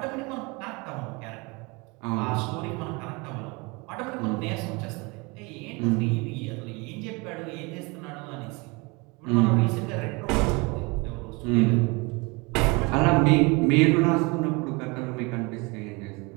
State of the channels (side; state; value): left; quieter; 27.0 dB